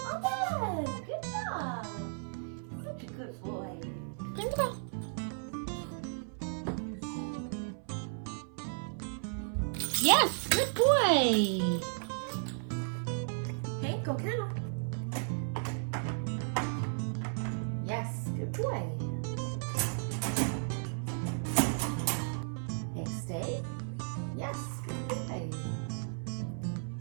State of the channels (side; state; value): left; silent; 55 dB below the other